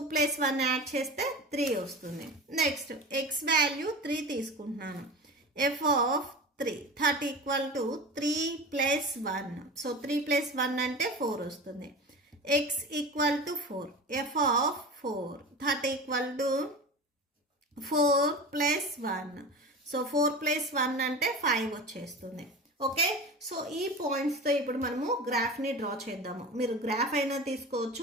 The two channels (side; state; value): both; normal; correlation 0.31